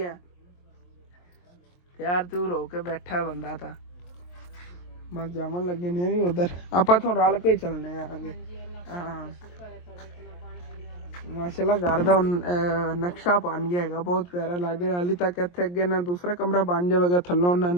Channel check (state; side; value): late; right; 23 ms